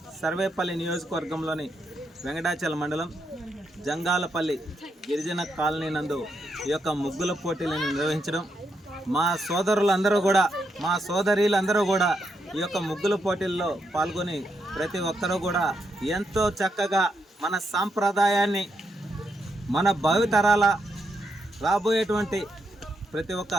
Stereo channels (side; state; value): both; normal; correlation 0.81